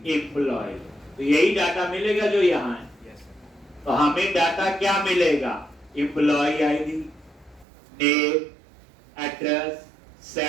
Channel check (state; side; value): drops out; left; at 7.7 s